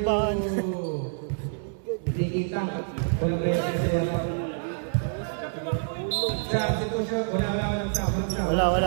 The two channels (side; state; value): left; silent; 60 dB below the other